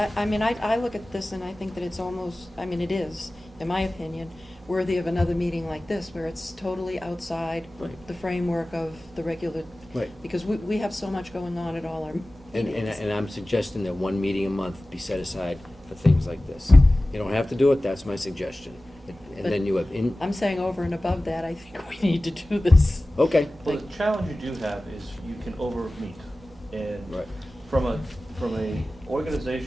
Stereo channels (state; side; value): normal; both; correlation 0.97